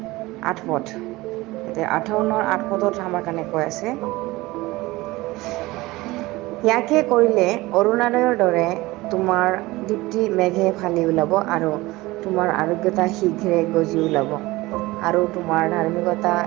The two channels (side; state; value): left; quieter; 20.1 dB